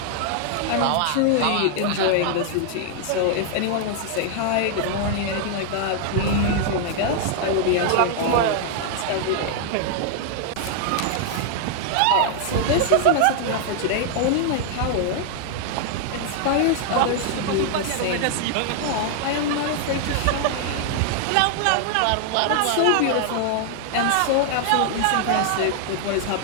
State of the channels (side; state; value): both; different; correlation 0.00